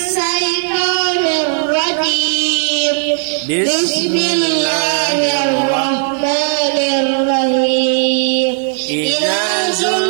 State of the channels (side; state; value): left; silent; digital silence